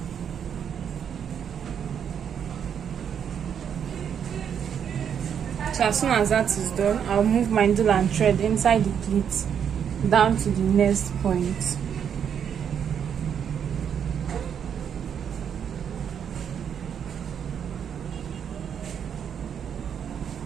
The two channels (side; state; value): left; quieter; 8.1 dB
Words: So as soon as that is done, I'll move my needle and thread inside the pleat down to the next point.